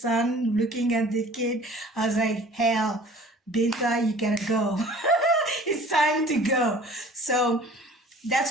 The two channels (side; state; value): both; normal; correlation 0.48